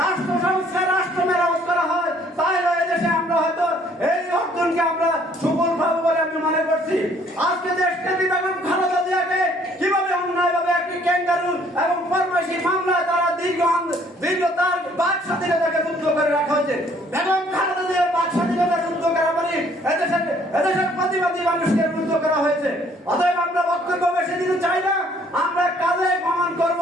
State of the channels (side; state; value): both; normal; correlation 0.61